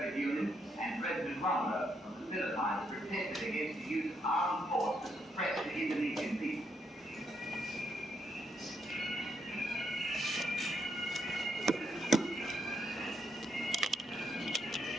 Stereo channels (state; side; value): normal; both; correlation 0.77